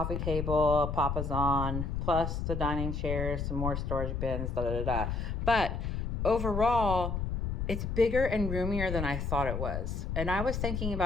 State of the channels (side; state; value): left; noise; rumble, 2 dB below the sound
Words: table, a papasan, plus the dining chairs, some more storage bins, da da da da. But overall, it's bigger and roomier than I thought it was. And I was thinking